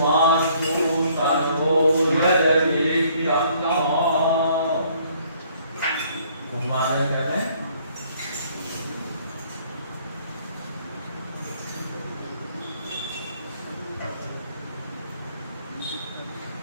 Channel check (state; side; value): inverted; both; correlation -0.62